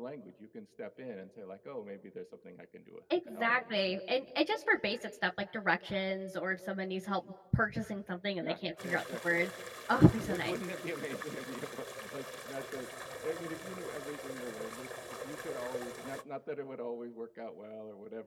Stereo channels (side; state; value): both; identical; correlation 1.00